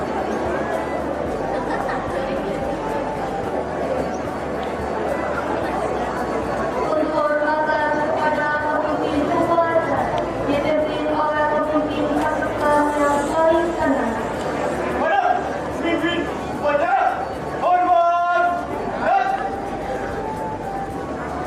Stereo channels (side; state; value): both; identical; correlation 1.00